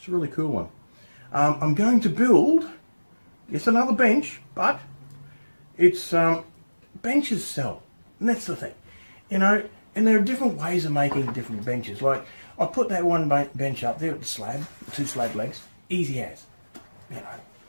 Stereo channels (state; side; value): inverted; both; correlation -1.00